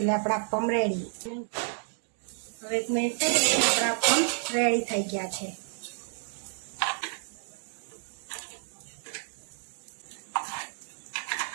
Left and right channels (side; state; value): left; silent; digital silence